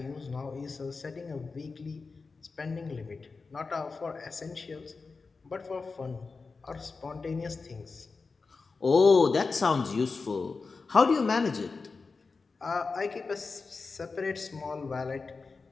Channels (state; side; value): quieter; right; 4.3 dB